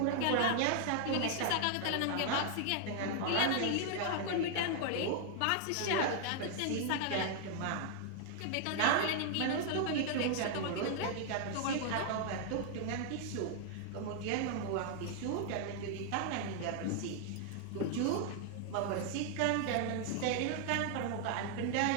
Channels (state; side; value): different; both; correlation 0.00